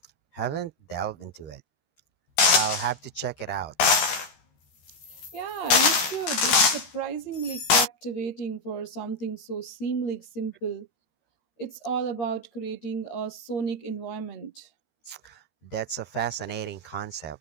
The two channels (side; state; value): right; late; 13 ms